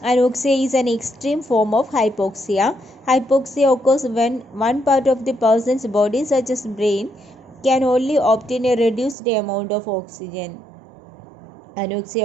Anoxia is an extreme form of hypoxia. Hypoxia occurs when one part of the person's body, such as brain, can only obtain a reduced amount of oxygen.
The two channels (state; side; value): drops out; left; at 9.2 s